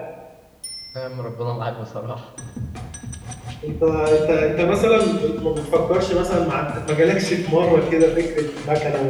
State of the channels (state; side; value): identical; both; correlation 1.00